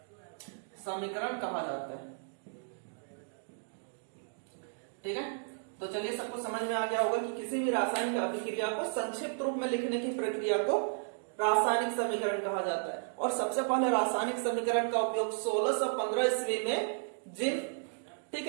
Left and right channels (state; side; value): silent; left; digital silence